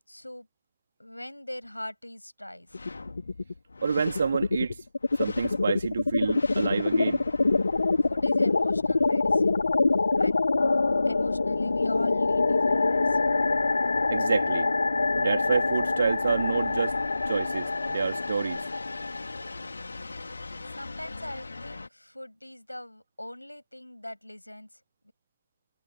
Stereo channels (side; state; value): both; inverted; correlation -0.93